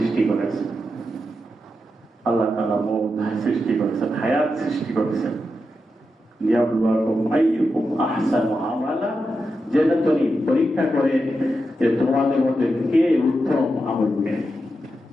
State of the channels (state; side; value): normal; both; correlation 0.87